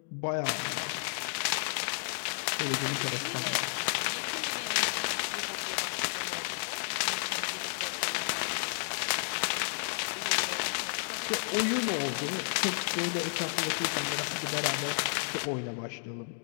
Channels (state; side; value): silent; right; digital silence